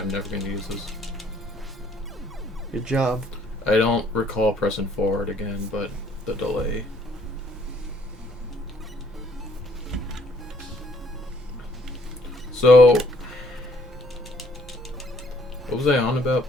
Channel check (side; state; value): both; normal; correlation 0.64